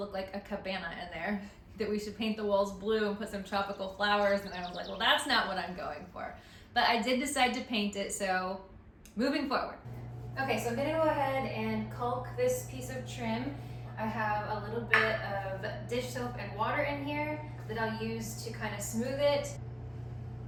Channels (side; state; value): both; identical; correlation 1.00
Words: like a cabana in there, that we should paint the walls blue and put some tropical flowers. And I was like, well, that's not what I'm going for. But I did decide to paint it, so moving forward. Okay, so I'm gonna go ahead and caulk this piece of trim. I have a little bit of dish soap and water in here that I'll use to kind of smooth it.